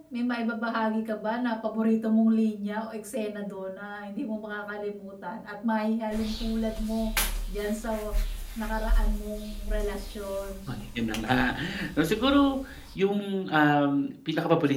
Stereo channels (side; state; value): both; identical; correlation 1.00